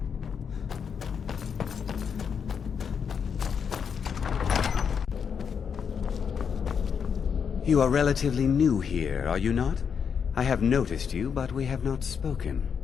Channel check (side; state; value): right; quieter; 6.8 dB